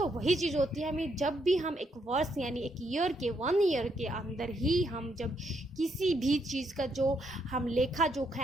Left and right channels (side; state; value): both; normal; correlation 0.76